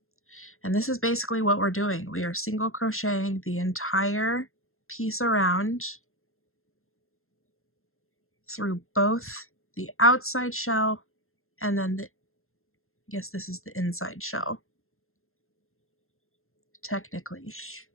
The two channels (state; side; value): late; right; 0.61 ms